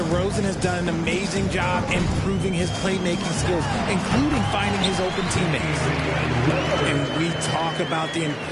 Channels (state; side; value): identical; both; correlation 1.00